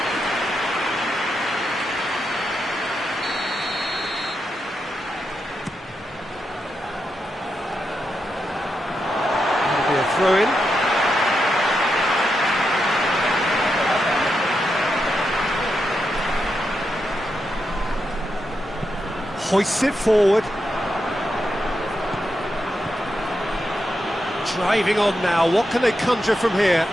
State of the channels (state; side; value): normal; both; correlation 0.85